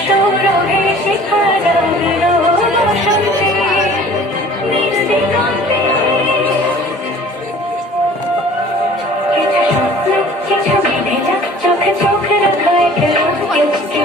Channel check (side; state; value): both; normal; correlation 0.48